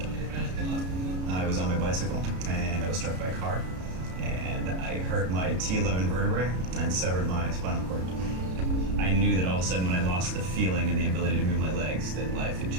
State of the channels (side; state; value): left; late; 33 ms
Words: I was on my bicycle and I was struck by a car, and I hurt my T11 vertebrae and severed my spinal cord. I knew that all of a sudden when I lost the feeling and the ability to move my legs, that life had